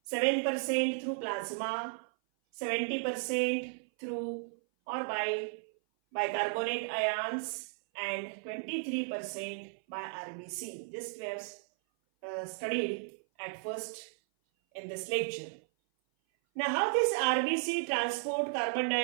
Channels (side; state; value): left; silent; 55 dB below the other